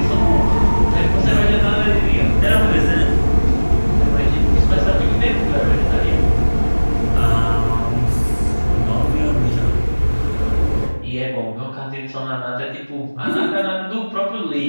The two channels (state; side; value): inverted; both; correlation -1.00